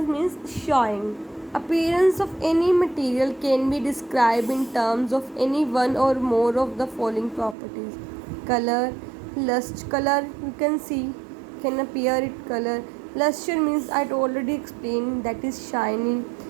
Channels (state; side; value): drops out; left; at 7.6 s